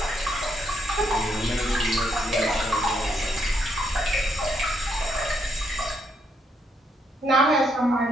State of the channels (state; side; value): normal; both; correlation 0.75